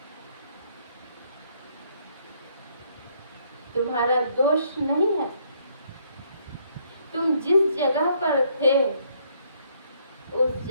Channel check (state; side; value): inverted; both; correlation -0.68